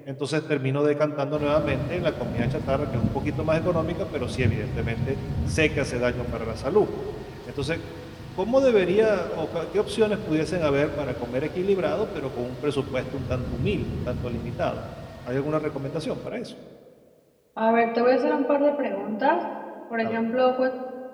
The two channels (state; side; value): identical; both; correlation 1.00